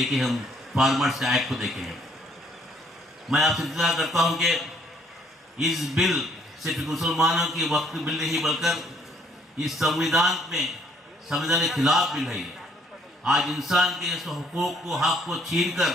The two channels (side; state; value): both; normal; correlation 0.65